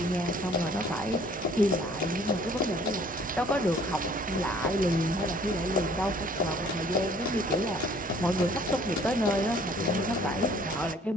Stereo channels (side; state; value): both; normal; correlation 0.56